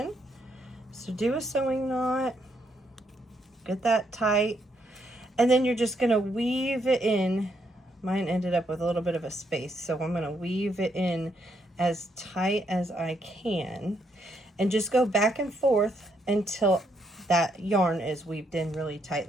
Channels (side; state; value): both; normal; correlation 0.75